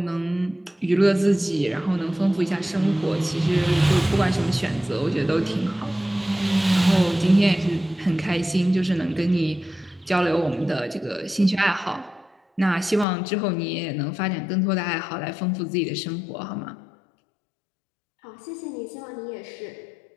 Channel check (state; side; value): drops out; right; at 13.1 s